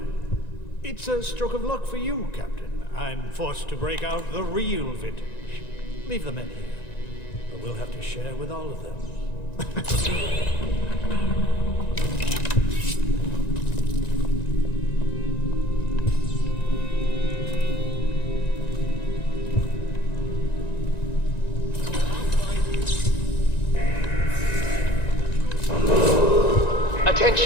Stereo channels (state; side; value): late; right; 1.9 ms